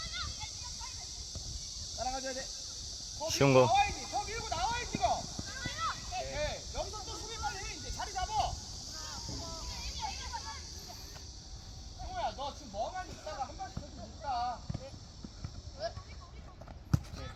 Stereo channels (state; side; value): identical; both; correlation 1.00